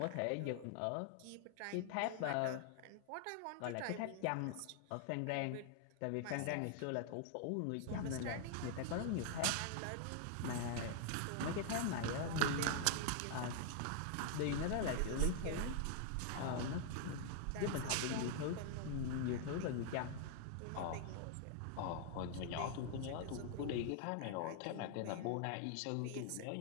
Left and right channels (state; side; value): different; both; correlation 0.00